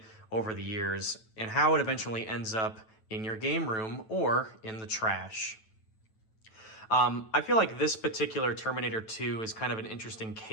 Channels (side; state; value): right; late; 9.2 ms